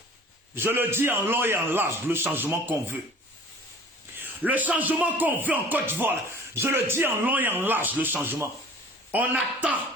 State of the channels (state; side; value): normal; both; correlation 0.46